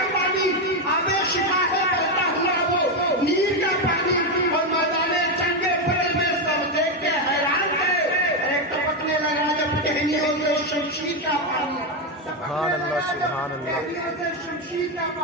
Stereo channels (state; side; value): normal; both; correlation 0.08